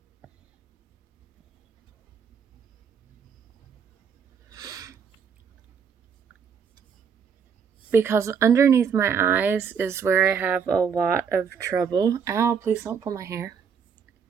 Because underneath my eyes is where I have a lot of trouble. Ow, please don't pull my hair.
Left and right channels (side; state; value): left; quieter; 6.8 dB